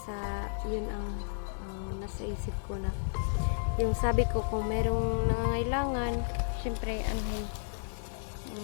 sa yun ang nasa isip ko na yung sabi ko kung merong nangangailangan, syempre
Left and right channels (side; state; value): right; silent; digital silence